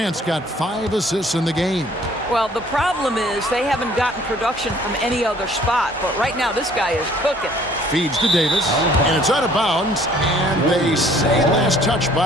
got 5 assists in the game. Well, the problem is they haven't gotten production from any other spot. But right now, this guy is cooking. Feeds to Davis, and it's out of bounds, and they say last touch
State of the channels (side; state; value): both; normal; correlation 0.57